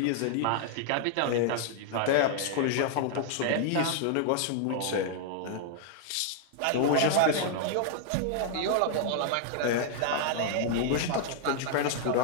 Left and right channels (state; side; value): different; both; correlation -0.01